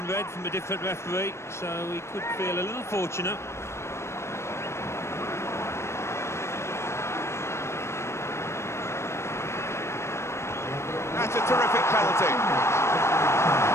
red from a different referee, so he could feel a little fortunate. That's a terrific penalty. I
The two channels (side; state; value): right; late; 0.13 ms